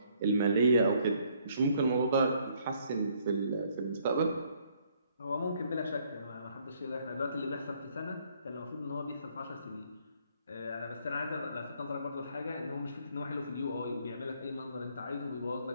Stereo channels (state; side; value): inverted; both; correlation -0.66